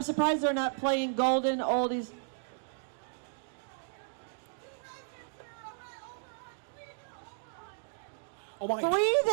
surprised they're not playing golden oldies. Oh my. 3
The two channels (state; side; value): silent; left; digital silence